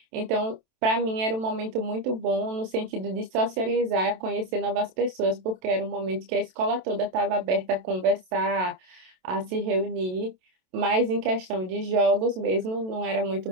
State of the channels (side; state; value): left; late; 27 ms